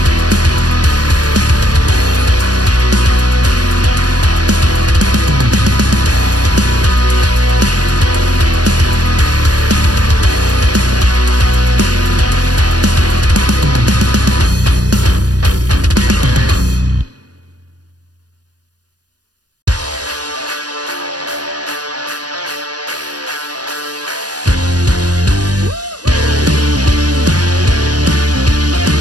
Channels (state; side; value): late; left; 0.69 ms